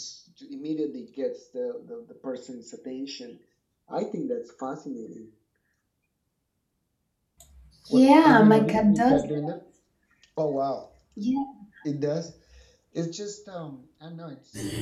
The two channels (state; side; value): identical; both; correlation 1.00